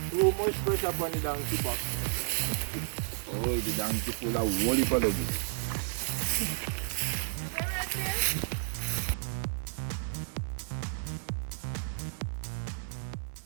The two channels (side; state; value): left; silent; 56 dB below the other